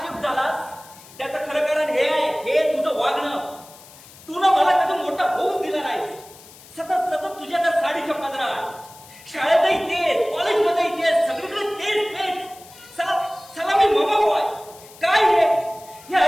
शिफ्ट झालास. त्याचं खरं कारण हे आहे. हे तुझं वागणं. तू ना मला कधी मोठा होऊच दिला नाही. सतत सतत तुझ्या त्या साडीच्या पदरात. शाळेतही तेच कॉलेजमध्येही तेच सगळीकडे तेच तेच. चला मी मामा बॉय काय हे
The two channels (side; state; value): left; noise; hiss, 21 dB below the sound